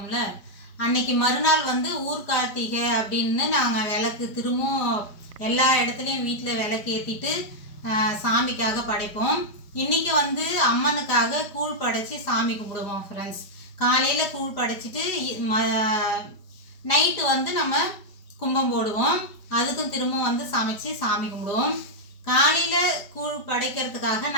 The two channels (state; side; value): late; right; 5.0 ms